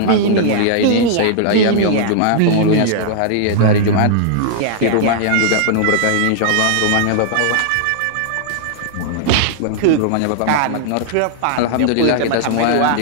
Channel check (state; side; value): different; both; correlation -0.01